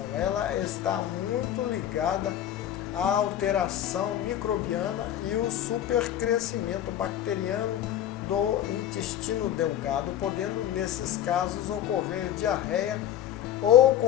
Ela está muito ligada à alteração microbiana e o supercrescimento bacteriano do intestino delgado, podendo nesses casos ocorrer diarreia ou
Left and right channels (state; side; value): quieter; right; 11.1 dB